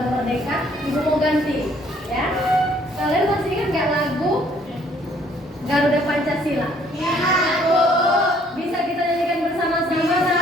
Merdeka, Ibu mau ganti, ya. Kalian masih ingat nggak lagu Garuda Pancasila? Ya, Bu. Bisa kita nyanyikan bersama-sama?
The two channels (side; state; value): both; normal; correlation 0.62